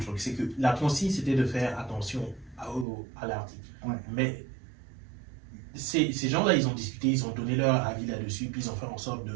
c'est que la consigne c'était de faire attention à l'article. Ouais. Mais ces gens-là, ils ont discuté, ils ont donné leur avis là-dessus, puis ils ont fait en sorte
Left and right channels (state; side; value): drops out; left; at 2.9 s